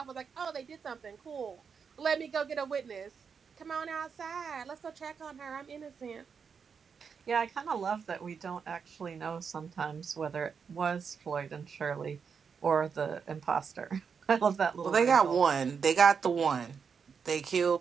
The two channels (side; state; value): left; quieter; 6.2 dB